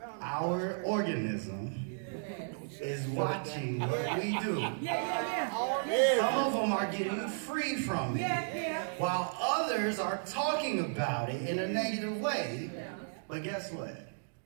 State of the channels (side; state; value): left; silent; digital silence